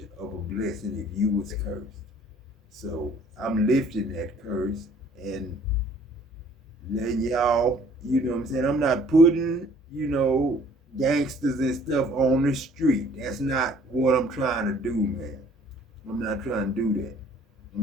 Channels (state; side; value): normal; both; correlation 0.56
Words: of a blessing if you was cursed. So I'm lifting that curse and letting y'all, you know what I'm saying? I'm not putting, gangsters and stuff on the street. That's not what I'm trying to do, man. I'm not trying to do that.